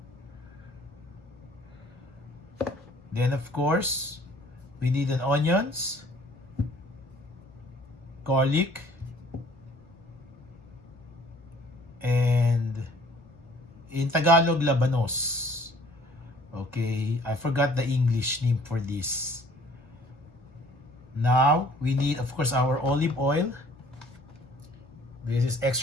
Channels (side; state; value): both; normal; correlation 0.55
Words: Then, of course, we need an onions, garlic, and in Tagalog, labanos. Okay, I forgot the English name for this. Now, we need, of course, our olive oil. This is